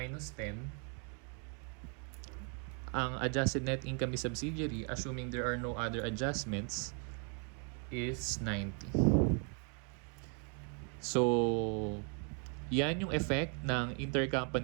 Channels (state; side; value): quieter; left; 39.7 dB